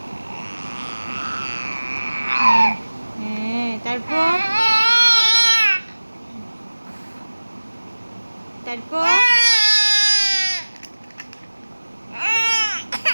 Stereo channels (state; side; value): inverted; both; correlation -1.00